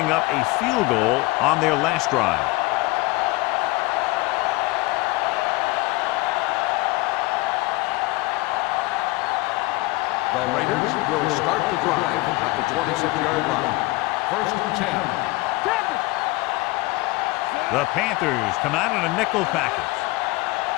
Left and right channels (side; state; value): right; quieter; 22.0 dB